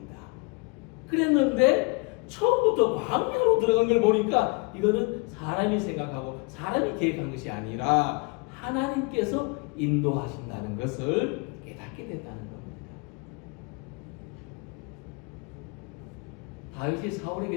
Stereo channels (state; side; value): quieter; right; 29.9 dB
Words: 그랬는데 처음부터 광야로 들어간 걸 보니까 이거는 사람이 생각하고 사람이 계획한 것이 아니라 하나님께서 인도하신다는 것을 깨닫게 됐다는 겁니다. 다윗이